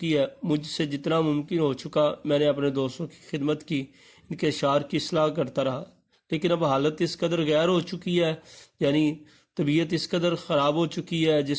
ہے، مجھ سے جتنا ممکن ہو چکا میں نے اپنے دوستوں کی خدمت کی، ان کے اشعار کی اصلاح کرتا رہا، لیکن اب حالت اس قدر غیر ہو چکی ہے، یعنی طبیعت اس قدر خراب ہو چکی ہے،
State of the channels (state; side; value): identical; both; correlation 1.00